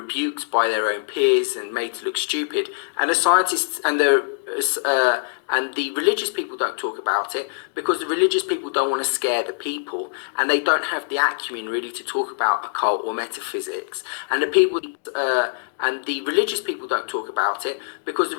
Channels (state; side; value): silent; right; digital silence